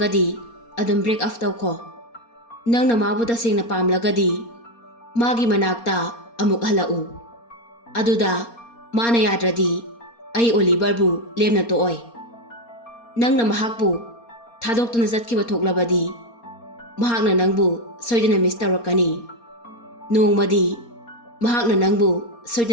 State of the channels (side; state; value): right; late; 4.3 ms